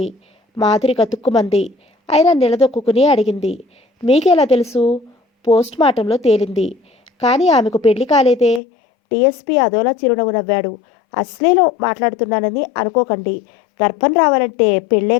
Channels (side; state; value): right; drops out; at 8.6 s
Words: మాధురి కతుక్కుమంది. అయినా నిలదొక్కుని అడిగింది. మీకెలా తెలుసు? పోస్ట్ మార్టంలో తేలింది. కానీ ఆమెకు పెళ్లి కాలేదే. డిఎస్పీ అదోలా చిరునవ్వు నవ్వాడు. అశ్లీలం మాట్లాడుతున్నానని అనుకోకండి. గర్భం రావాలంటే పెళ్ళే